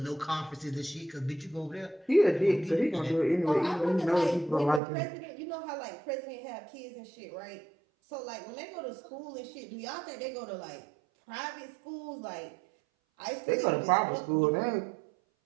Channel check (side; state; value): left; drops out; at 4.8 s